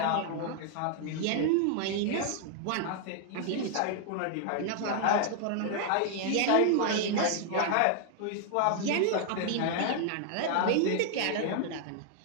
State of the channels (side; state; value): both; different; correlation 0.00